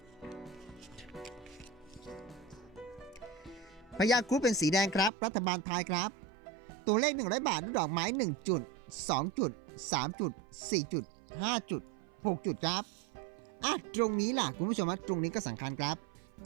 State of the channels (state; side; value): drops out; left; at 5.1 s